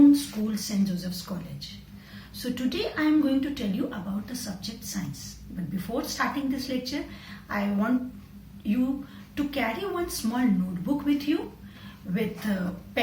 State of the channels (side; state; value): both; identical; correlation 1.00